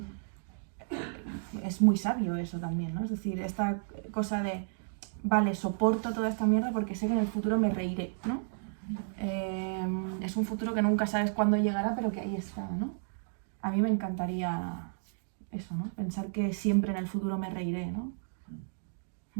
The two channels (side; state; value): left; silent; digital silence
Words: Es muy sabio eso también, ¿no? Es decir, esta cosa de, vale, soporto toda esta mierda porque sé que en el futuro me reiré, ¿no? Es un futuro que nunca sabes cuándo llegará, pero que ahí está, ¿no? A mí me encantaría eso, ¿no? Pensar que siempre en el futuro me reiré, ¿no?